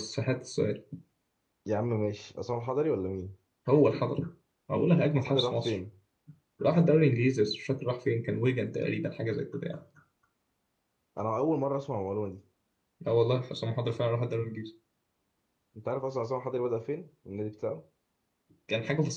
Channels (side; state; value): both; identical; correlation 1.00